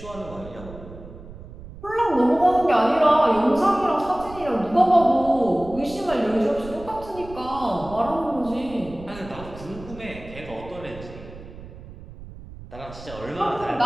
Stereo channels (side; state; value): right; noise; rumble, 16 dB below the sound